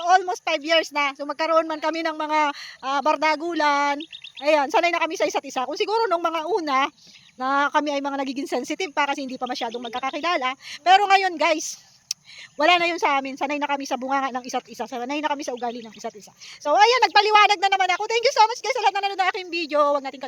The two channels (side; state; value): both; identical; correlation 1.00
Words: almost 5 years na. So magkaroon man kami ng mga bardagulan. Ayan, sanay na kami sa isa't isa. Kung siguro nung mga una, na kami ay mga nagiging sensitive pa kasi hindi pa masyadong magkakakilala. Pero ngayon, guys, wala na yun sa amin. Sanay na kami sa bunganga ng isa't isa. Sanay na kami sa ugali ng isa't isa. So, ayan, nagpaliwanag na naman ako. Thank you so much, guys, sa lahat na nanonood ng aking video. Huwag natin